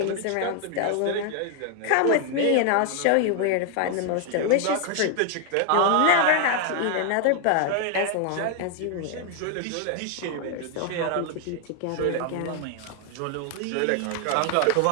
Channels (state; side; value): different; both; correlation 0.00